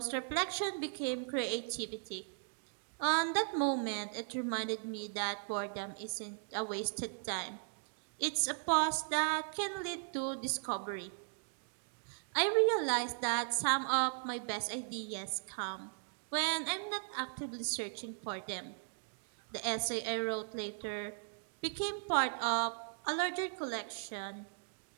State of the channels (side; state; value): left; silent; digital silence